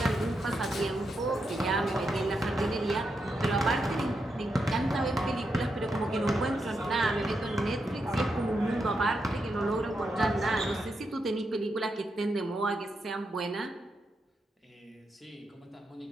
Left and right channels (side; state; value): both; normal; correlation 0.84